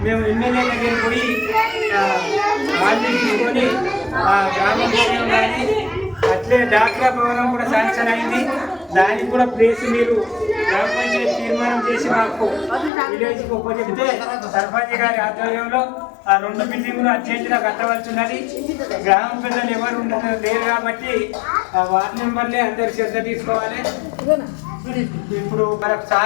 మేము ఎమ్మెల్యే దగ్గర పోయి వాళ్ళు తీసుకొని ఆ గ్రామ భవనం కానీ అట్లే డాక్రా భవనం కూడా శాంక్షన్ అయింది. దానికి కూడా ప్లేస్ మీరు గ్రామ పంచాయతీ తీర్మానం చేసి మాకు విలేజ్కి ఉపజెప్తే సర్పంచ్ గారి ఆధ్వర్యంలో ఆ 2 బిల్డింగులు అర్జెంటుగా కట్టవలసి ఉన్నది. గ్రామ పెద్దలు ఎవరు లేరు కాబట్టి ఆ వార్డు మెంబర్లే అందరు శ్రద్ధ తీసుకోవాలి. ఇప్పుడు మనకు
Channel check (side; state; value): right; drops out; at 12.9 s